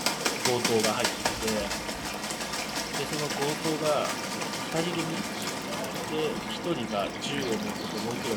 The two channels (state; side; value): identical; both; correlation 1.00